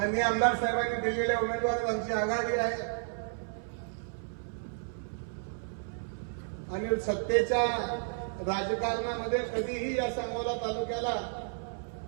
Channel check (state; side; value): silent; left; 56 dB below the other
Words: आमदार साहेबांनी दिलेल्या उमेदवार आमची आघाडी आहे. आणि सत्तेच्या राजकारणामध्ये कधीही या सांगोला तालुक्याला